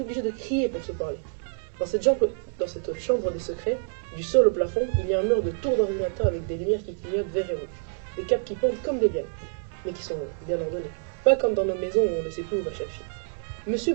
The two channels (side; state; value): left; silent; digital silence